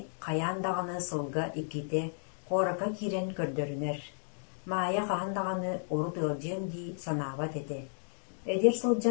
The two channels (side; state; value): right; silent; digital silence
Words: қаяндағаны сылға иките қорака кирен көрдөрінер. Мая қағандағаны урут ылжем ди санабат ете. Эдер